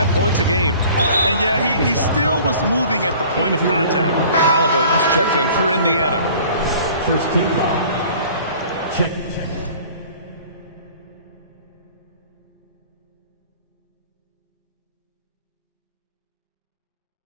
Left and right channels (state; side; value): inverted; both; correlation -0.48